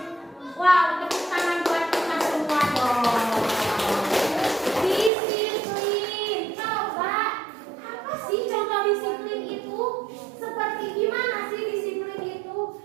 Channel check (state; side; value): drops out; left; at 5.1 s